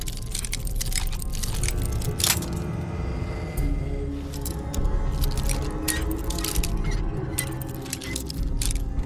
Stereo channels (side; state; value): both; identical; correlation 1.00